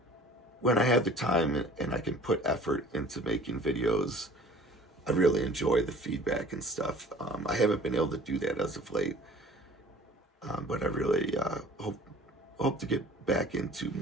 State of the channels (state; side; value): normal; both; correlation 0.47